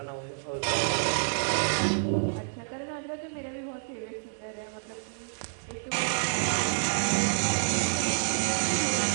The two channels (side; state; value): left; silent; digital silence